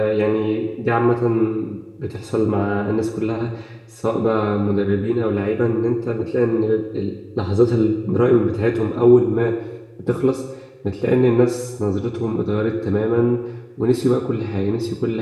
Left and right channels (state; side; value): identical; both; correlation 1.00